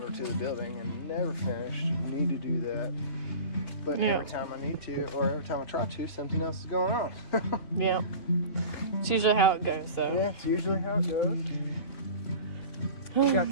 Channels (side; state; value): right; late; 2.9 ms